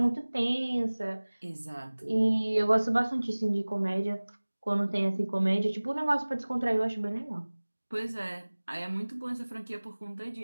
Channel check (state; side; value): inverted; both; correlation -1.00